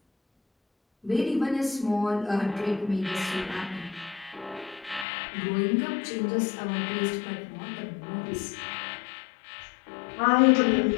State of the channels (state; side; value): drops out; right; at 5.1 s